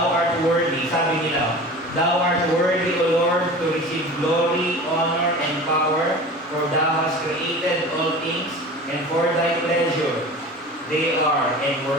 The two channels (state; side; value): normal; both; correlation 0.37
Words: art worthy, sabi nila, Thou art worthy, O Lord, to receive glory, honor, and power, for Thou hast created all things, and for Thy pleasure they are and